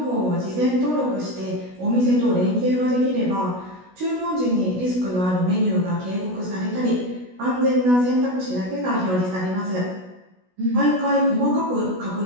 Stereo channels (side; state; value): left; late; 16 ms